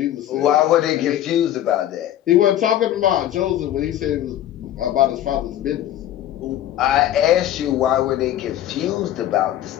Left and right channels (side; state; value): right; quieter; 12.2 dB